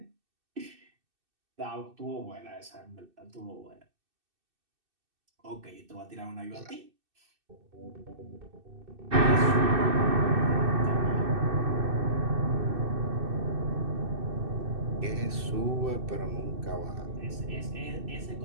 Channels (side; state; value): left; late; 2.6 ms